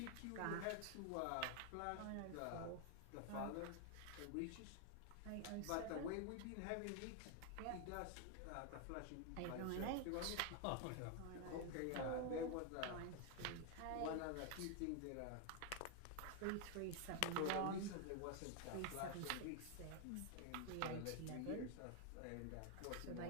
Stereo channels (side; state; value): both; different; correlation 0.01